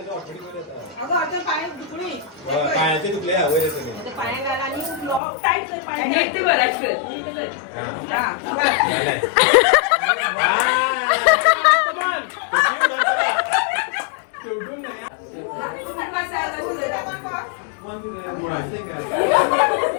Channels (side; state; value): right; drops out; at 5.2 s